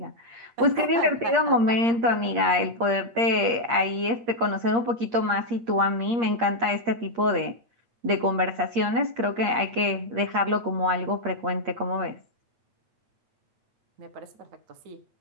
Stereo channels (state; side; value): late; left; 8.6 ms